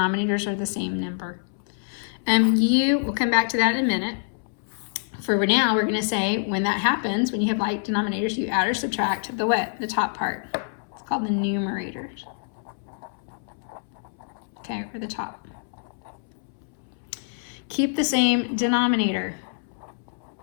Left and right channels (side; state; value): right; silent; 61 dB below the other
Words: are the same number. We'll come back to that in a minute. For now, we're gonna say when that happens, when you have like denominators, you add or subtract the what? The top part. It's called the numerators. Okay, or the top. Keep the same denominator.